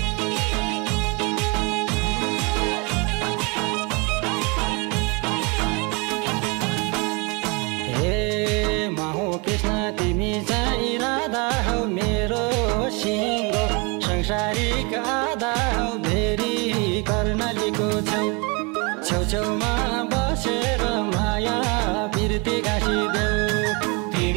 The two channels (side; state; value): left; quieter; 30.6 dB